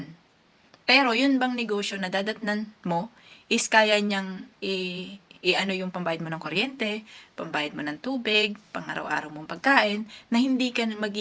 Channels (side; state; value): both; identical; correlation 1.00